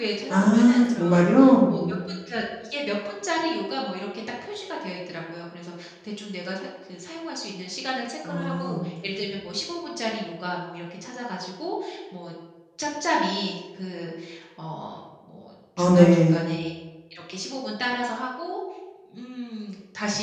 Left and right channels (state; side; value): identical; both; correlation 1.00